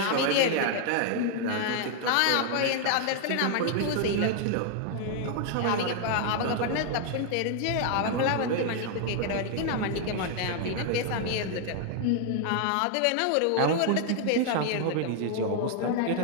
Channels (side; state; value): both; different; correlation 0.00